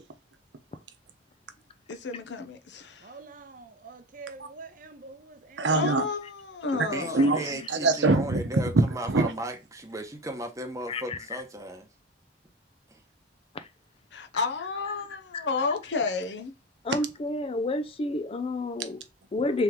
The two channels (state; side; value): normal; both; correlation 0.28